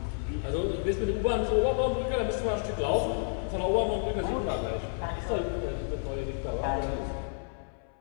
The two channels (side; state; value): right; silent; 58 dB below the other